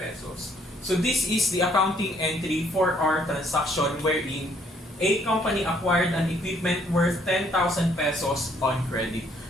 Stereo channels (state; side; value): normal; both; correlation 0.66